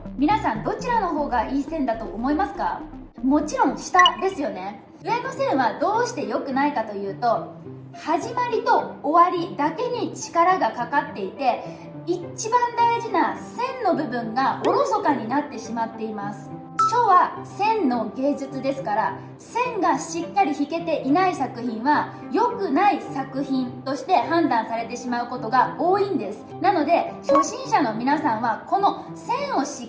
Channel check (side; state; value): both; identical; correlation 1.00